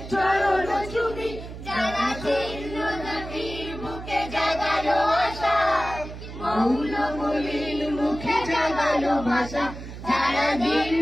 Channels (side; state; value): right; noise; hum, 11 dB below the sound